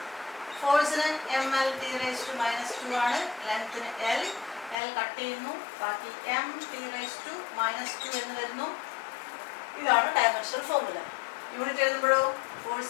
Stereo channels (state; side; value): drops out; right; at 4.8 s